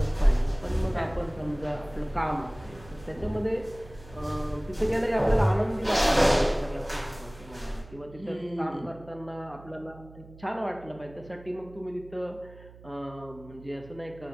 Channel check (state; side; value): noise; right; hum, 20 dB below the sound